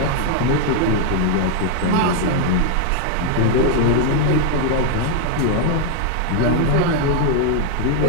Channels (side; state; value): both; different; correlation 0.00